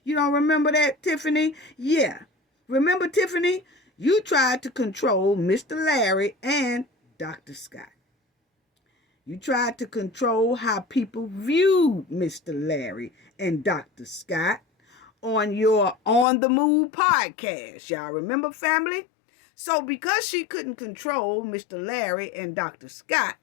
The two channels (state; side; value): drops out; right; at 16.2 s